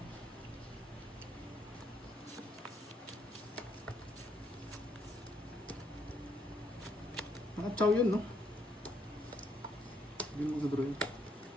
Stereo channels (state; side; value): normal; both; correlation 0.72